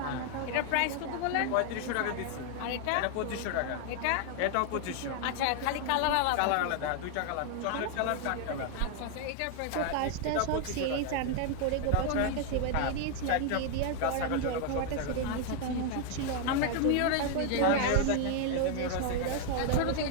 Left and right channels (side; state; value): both; different; correlation 0.00